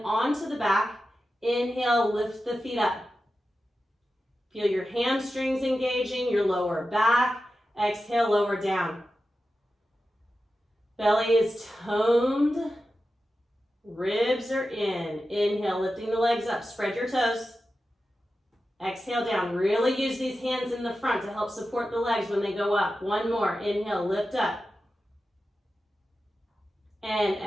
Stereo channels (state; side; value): normal; both; correlation 0.92